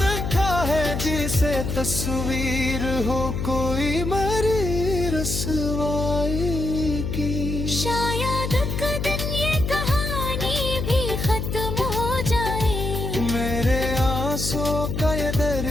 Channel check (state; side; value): noise; left; hum, 3 dB below the sound